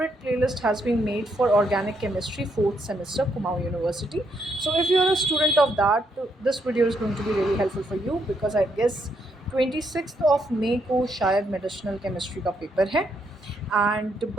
playlist has been made for organic chemistry 4th semester Kumaon University. So, if you are a student of that, this video is going to be really helpful for you because I guess 26th of May को शायद medicinal chemistry का paper है and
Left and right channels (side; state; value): both; normal; correlation 0.76